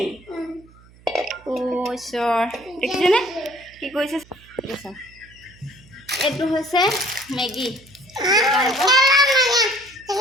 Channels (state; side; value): noise; right; hum, 26 dB below the sound